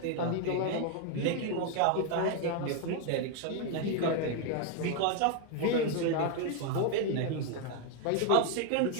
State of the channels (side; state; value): both; different; correlation 0.01